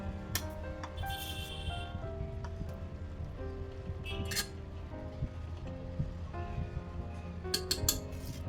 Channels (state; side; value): identical; both; correlation 1.00